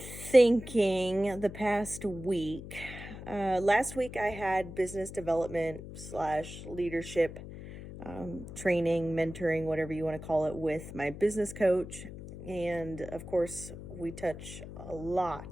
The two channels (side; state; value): left; noise; hum, 12 dB below the sound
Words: the past week. Last week I had business development / leadership training, mentoring, whatever you want to call it, with my business coach. And of course, we touch a